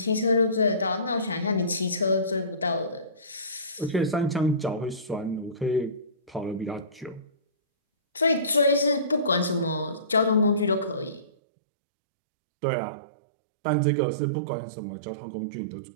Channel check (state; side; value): drops out; left; at 11.3 s